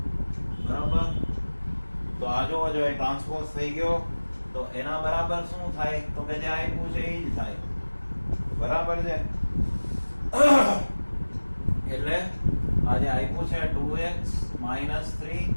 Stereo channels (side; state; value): both; inverted; correlation -1.00